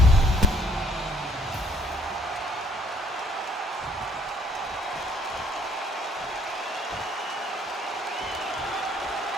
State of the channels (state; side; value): normal; both; correlation 0.63